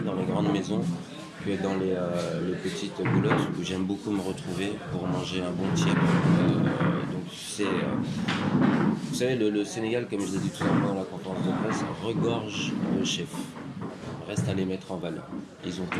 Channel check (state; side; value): identical; both; correlation 1.00